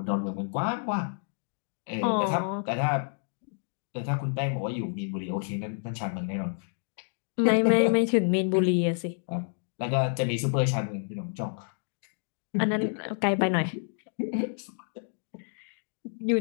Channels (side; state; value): right; silent; digital silence